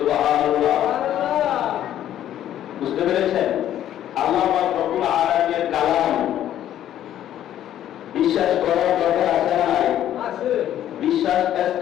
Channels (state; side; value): quieter; right; 11.5 dB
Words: বুঝতে পেরেছেন? আল্লাহ পাক রব্বুল আলামিনের কালাম বিশ্বাস করার দরকার আছে না নাই? আছে। বিশ্বাস